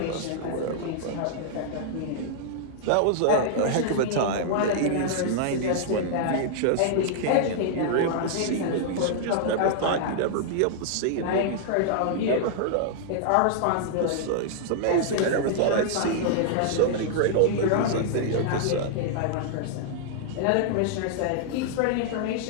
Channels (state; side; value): different; both; correlation -0.01